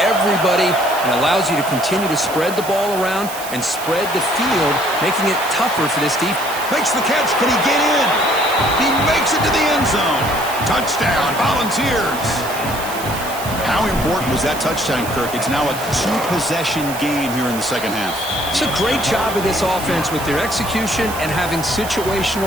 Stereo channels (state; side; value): noise; right; hiss, 11 dB below the sound